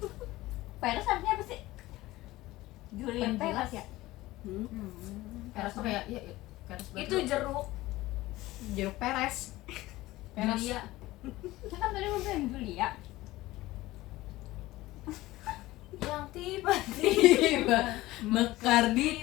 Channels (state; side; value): quieter; right; 17.9 dB